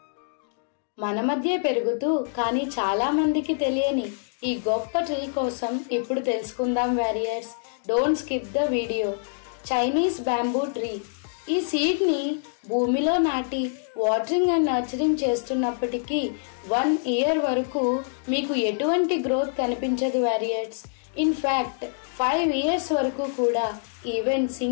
మన మధ్య పెరుగుతూ కానీ చాలా మందికి తెలియని ఈ గొప్ప ట్రీ కోసం ఇప్పుడు తెలుసుకుందాం warriors. Don't skip the video. Chinese bamboo tree. ఈ సీడ్ ని భూమిలో నాటి వాటరింగ్ అండ్ నర్చరింగ్ చేస్తున్నప్పటికీ 1 year వరకు మీకు ఎటువంటి గ్రోత్ కనిపించదు వారియర్స్. ఇన్ ఫ్యాక్ట్ 5 years వరకు కూడా ఈవెన్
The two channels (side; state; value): right; silent; digital silence